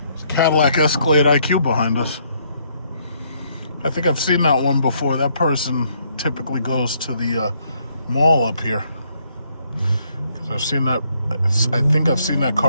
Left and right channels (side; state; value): both; inverted; correlation -0.70